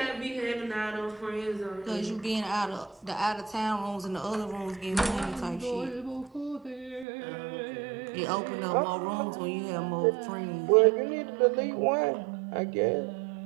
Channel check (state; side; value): drops out; left; at 7.1 s